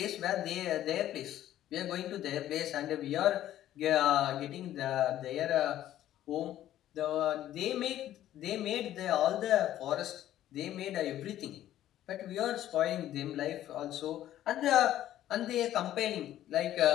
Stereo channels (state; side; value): quieter; right; 12.7 dB